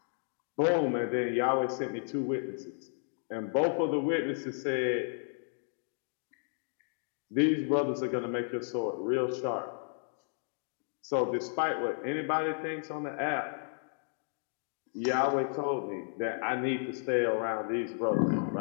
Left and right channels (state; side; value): silent; right; digital silence